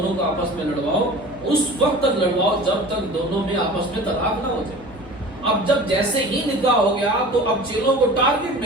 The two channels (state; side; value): noise; right; hum, 21 dB below the sound